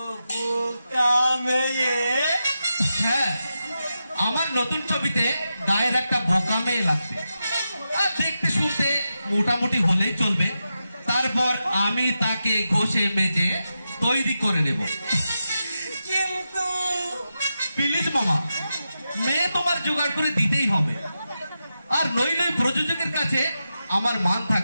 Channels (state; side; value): inverted; both; correlation -0.89